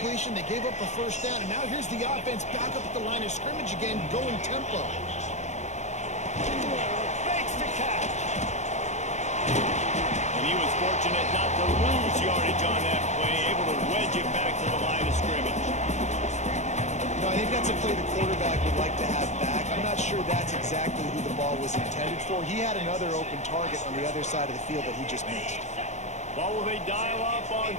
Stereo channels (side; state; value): right; late; 0.34 ms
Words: they gave up the first down, and now here's the offense back up at the line of scrimmage again, going tempo. Makes the catch. And he was fortunate not to lose yardage on that play, able to wedge it back to the line of scrimmage. No, I think that's a play the quarterback would like to have back. I'm not sure that's exactly who the ball was intended for. He had another open target on the other side of the field that he just missed. What will they dial up on